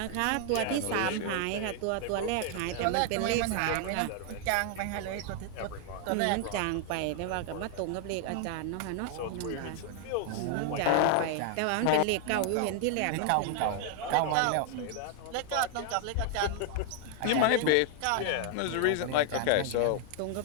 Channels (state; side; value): different; both; correlation 0.00